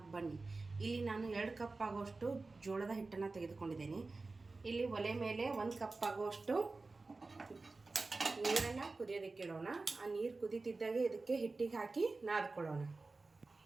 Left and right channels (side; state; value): left; quieter; 3.6 dB